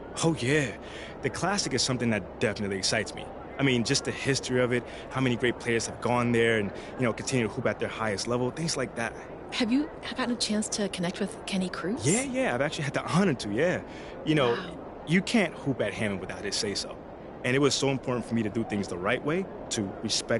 Oh, yeah. The Classic is something that definitely excites me. I mean, just the history of it, how many great players have gone there and, continue to hoop at their highest level, things like that. Have you gotten a chance to connect with Kenny Cruz? Yeah. I've actually had the honor to, yeah. Wow. You can't hoop at Hammond without his say-so. And it was so important for me to do things the right way, to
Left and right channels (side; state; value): both; identical; correlation 1.00